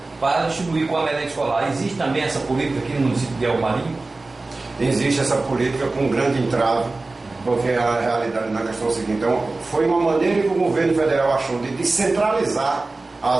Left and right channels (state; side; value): quieter; left; 3.3 dB